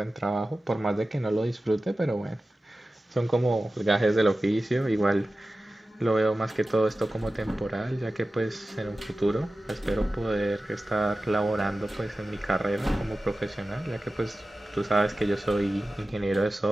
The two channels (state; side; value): normal; both; correlation 0.95